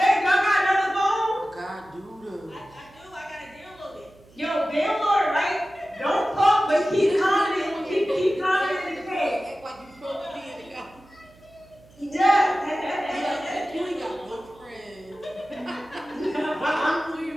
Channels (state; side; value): noise; right; hum, 27 dB below the sound